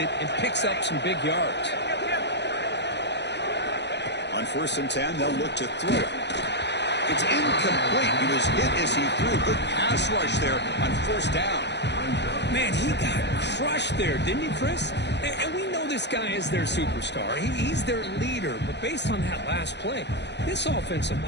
and picks up some big yards. On first and 10, they'll look to throw it. It's incomplete. He was hit as he threw. Good pass rush there on first down. Man, he got crushed there, didn't he, Chris? And we know this guy is their superstar. He's their leader. But based on that last play, this offensive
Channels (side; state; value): right; late; 0.50 ms